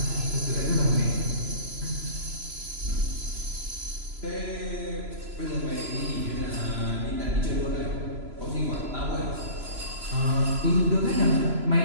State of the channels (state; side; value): late; left; 3.0 ms